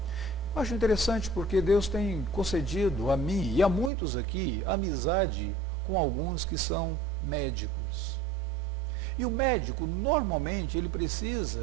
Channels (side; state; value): left; drops out; at 3.9 s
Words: Eu acho interessante porque Deus tem concedido a mim e a muitos aqui amizade com alguns que são médicos. E o médico, normalmente, ele